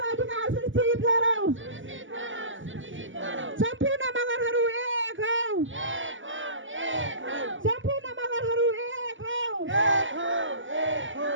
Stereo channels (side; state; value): left; late; 0.56 ms